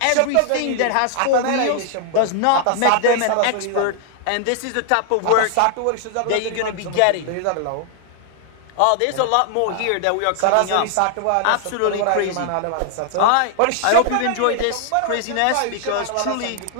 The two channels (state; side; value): different; both; correlation 0.00